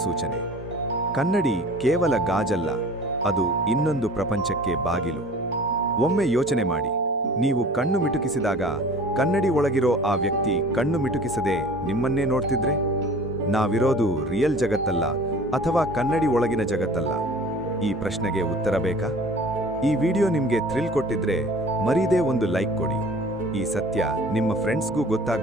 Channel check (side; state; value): both; normal; correlation 0.45